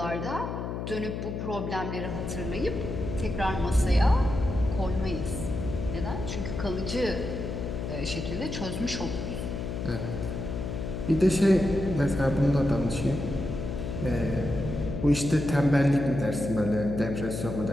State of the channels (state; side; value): noise; left; hum, 5 dB below the sound